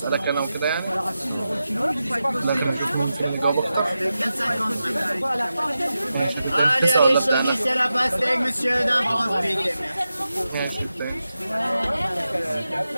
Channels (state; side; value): inverted; both; correlation -0.91